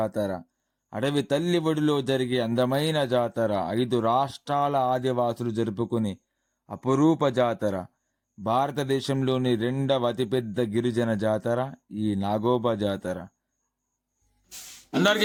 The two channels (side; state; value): both; identical; correlation 1.00